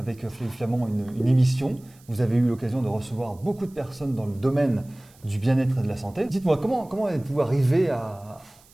Flavie Flament une émission. Vous avez eu l'occasion de recevoir beaucoup de personnes dans le domaine du bien-être et de la santé. Dites-moi, comment êtes-vous arrivé à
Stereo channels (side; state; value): right; noise; hiss, 28 dB below the sound